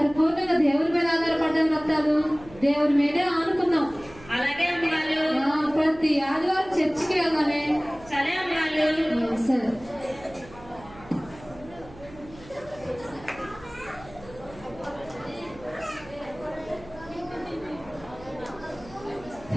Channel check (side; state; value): right; noise; hum, 20 dB below the sound